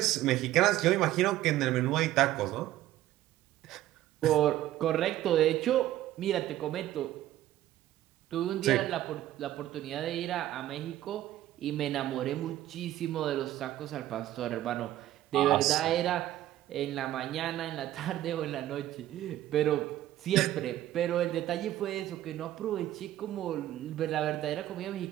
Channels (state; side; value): quieter; left; 13.8 dB